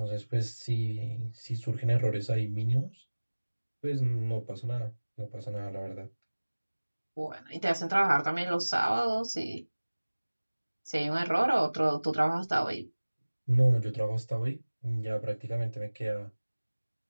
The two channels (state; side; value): inverted; both; correlation -1.00